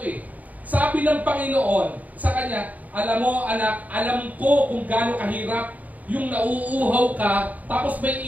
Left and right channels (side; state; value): left; late; 0.075 ms